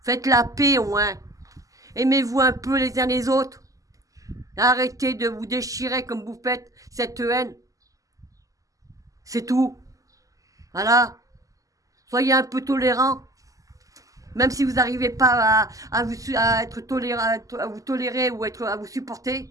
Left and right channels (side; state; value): left; late; 0.17 ms